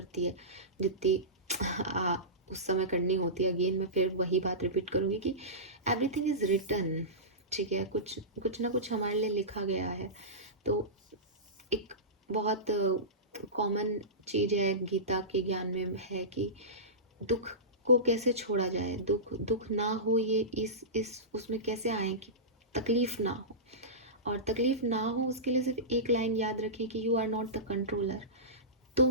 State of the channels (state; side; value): normal; both; correlation -0.19